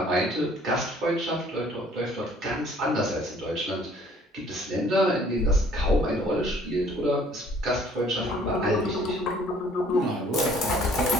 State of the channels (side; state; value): both; normal; correlation 0.57